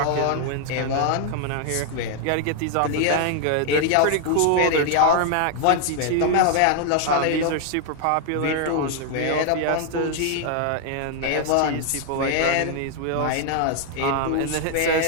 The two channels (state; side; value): different; both; correlation 0.00